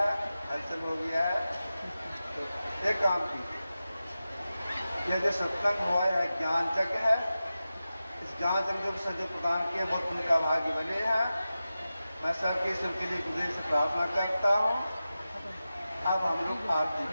हलचल हो गया है तो एक काम कीजिए, यह जो सत्संग हुआ है ज्ञान यज्ञ है, इस ज्ञान यज्ञ से जो प्रदान किए बहुत उनका भाग्य बने हैं। मैं सबके लिए गुरुदेव से प्रार्थना करता हूँ। अब हम लोग आरती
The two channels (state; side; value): inverted; both; correlation -0.94